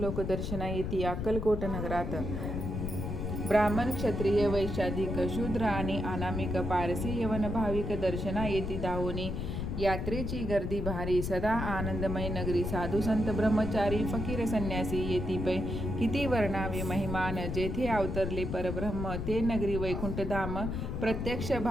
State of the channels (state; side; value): noise; left; rumble, 3 dB below the sound